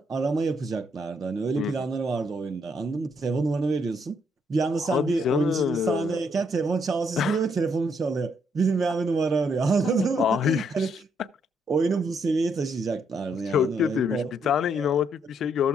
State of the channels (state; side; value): normal; both; correlation 0.73